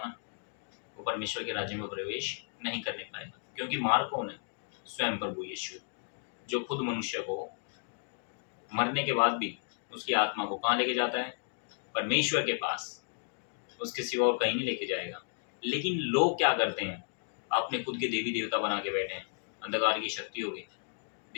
वो परमेश्वर के राज्य में प्रवेश नहीं करने पाएगा। क्योंकि मार्ग कौन है? स्वयं प्रभु यीशु, जो खुद मनुष्य को मरने के बाद भी उसकी आत्मा को कहाँ लेके जाता है? परमेश्वर के पास। उसके सिवा और कहीं नहीं लेके जाएगा। लेकिन लोग क्या करते हैं? अपने खुद के देवी देवता बना के बैठे हैं, अंधकार की शक्ति होगी,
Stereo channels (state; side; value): silent; right; digital silence